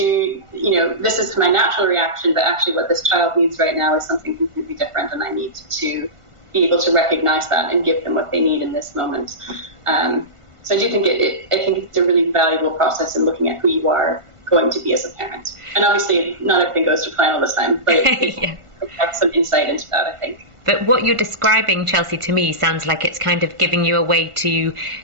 this is my natural reaction, but actually what this child needs right now is something completely different, and I need to be able to recognize that and give them what they need in this moment. So I do think I think it's a really valuable process in looking at who you are going to be as a parent. And obviously, not everything goes to plan all the time, but it provides some insight into that, I think. But what you're describing, Chelsea, to me sounds like it's kind of giving you a way to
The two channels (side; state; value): left; late; 1.5 ms